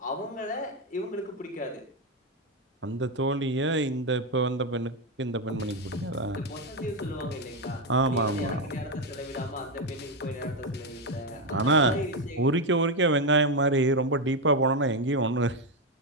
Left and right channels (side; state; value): both; normal; correlation 0.07